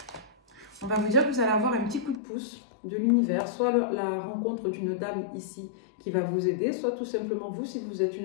On va vous dire que vous allez avoir un petit coup de pouce de l'univers, soit la rencontre d'une dame ici qui va vous aider, soit tout simplement vous, si vous êtes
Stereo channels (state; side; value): drops out; right; at 2.2 s